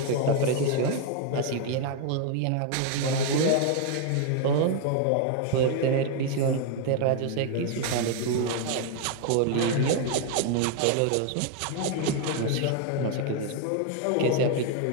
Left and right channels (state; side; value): different; both; correlation 0.00